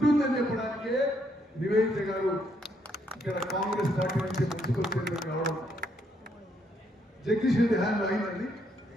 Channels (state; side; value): normal; both; correlation 0.73